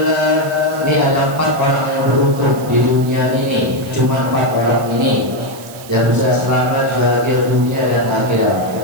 ini ada 4 orang yang beruntung di dunia ini. Cuma 4 orang ini yang bisa selamat bahagia dunia dan akhirat.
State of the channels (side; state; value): right; noise; hiss, 18 dB below the sound